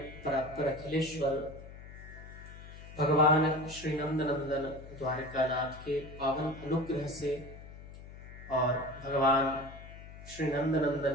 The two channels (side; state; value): left; noise; hum, 15 dB below the sound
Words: परात्पर अखिलेश्वर भगवान श्री नंदनंदन द्वारकानाथ के पावन अनुग्रह से और भगवान श्री नंदनंदन